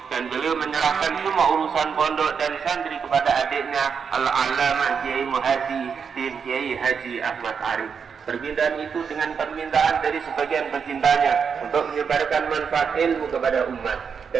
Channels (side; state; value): left; quieter; 6.4 dB